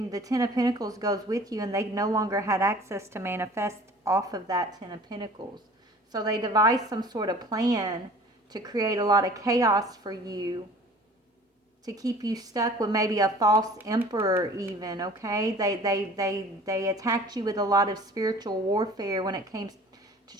the 10 of Pentacles goes with you, and they no longer had access to manifest off of that 10 of Pentacles. So they devised some sort of plan to create a lot of chaos for you, to keep you stuck with maybe a false emperor even, okay? They attacked you with a lot of spiritual warfare when it came to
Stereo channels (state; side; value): normal; both; correlation 0.47